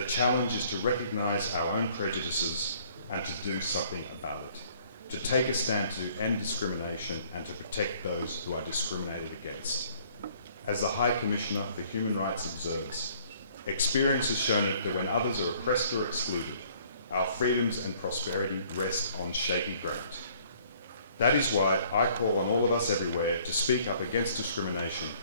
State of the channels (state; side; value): inverted; both; correlation -0.59